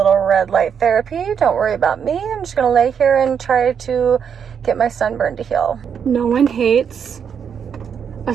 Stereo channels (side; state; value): left; quieter; 7.4 dB